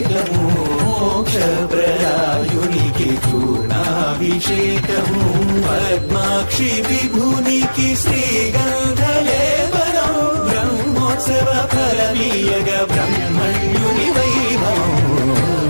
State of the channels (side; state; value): both; inverted; correlation -1.00